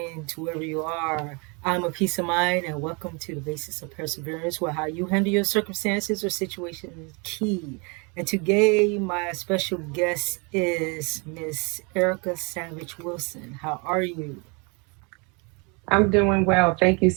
to wherever you are. I'm a peace of mind and welcome to the basics of perseverance, where how you handle your circumstances or situations is key. And today my special guest is Miss Erica Savage Wilson. How are you? I'm doing well. Thank you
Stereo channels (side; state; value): left; quieter; 31.6 dB